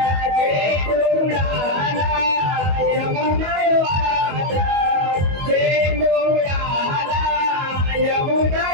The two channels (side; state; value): left; late; 22 ms